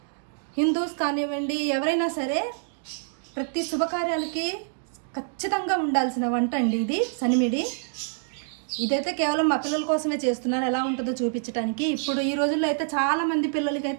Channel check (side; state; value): left; silent; digital silence